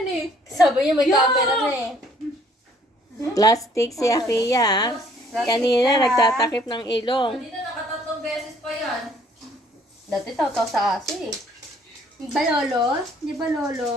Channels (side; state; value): both; normal; correlation 0.61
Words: eh. Sabi niya may camera na eh. Plastic si Akia. Kanina nagtatakip ng ilong. Hindi na nakatatlong beses pa yan. Dati tao-tao sa aso eh. Di ba lolo? Di ba